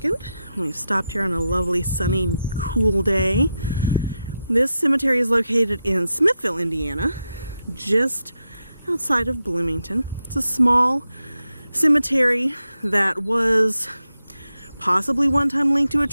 We've stopped here on a lovely, sunny, cool day. This cemetery is located in Smithville, Indiana, just outside of Bloomington. It's a small cemetery that was possibly one time linked to a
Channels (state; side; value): inverted; both; correlation -0.88